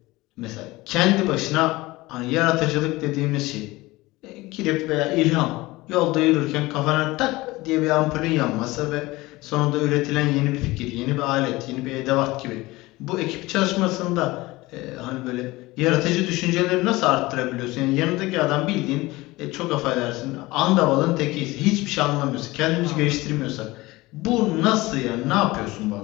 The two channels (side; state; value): right; quieter; 20.4 dB